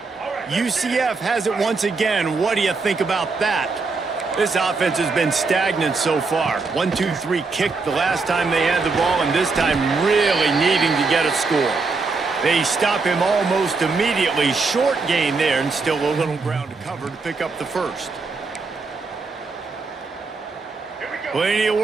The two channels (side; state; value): left; quieter; 4.2 dB